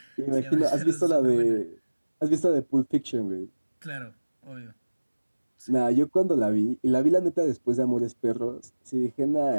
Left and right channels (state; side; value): inverted; both; correlation -1.00